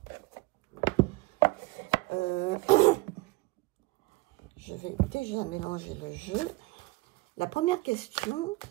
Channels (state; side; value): quieter; left; 22.0 dB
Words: Je vais déjà mélanger le jeu. La première question,